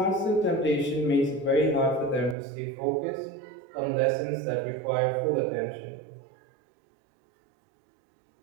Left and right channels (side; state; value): left; drops out; at 2.4 s